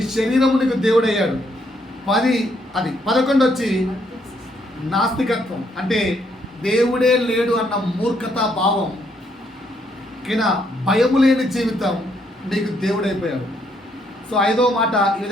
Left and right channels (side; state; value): both; normal; correlation 0.72